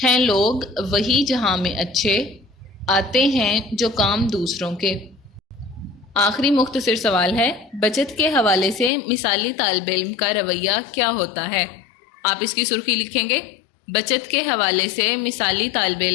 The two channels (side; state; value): right; drops out; at 8.9 s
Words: ہیں لوگ وہی جہاں میں اچھے، آتے ہیں جو کام دوسروں کے۔ آخری مختصر سوال ہے، بچت کے حوالے سے مثالی طالب علم کا رویہ کیا ہوتا ہے؟ آپ اس کی سرخی لکھیں گے، بچت کے حوالے سے مثالی طالب